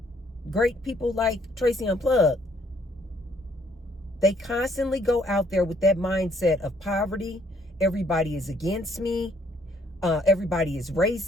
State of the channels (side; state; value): both; normal; correlation 0.66